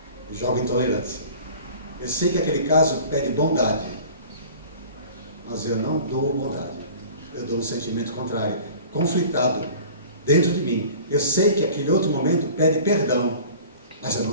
Eu jogo intolerância. Eu sei que aquele caso pede bondade, mas eu não dou bondade. Eu dou um sentimento contrário, conflitado dentro de mim. Eu sei que aquele outro momento pede perdão, mas eu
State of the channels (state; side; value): inverted; both; correlation -0.43